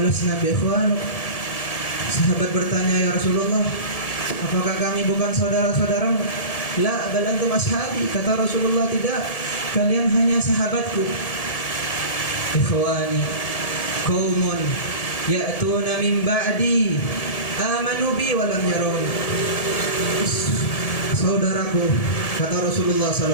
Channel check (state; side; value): late; right; 1.7 ms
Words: bi ikhwanuk?" Sahabat bertanya, "Ya Rasulullah, apakah kami bukan saudara-saudaramu?" "La, bal antum ashabi." Kata Rasulullah, "Tidak, kalian hanya sahabatku." "Ikhwani qaumun ya'tuna min ba'di amanu bi wa lam yarawun." Saudaraku, kata Rasulullah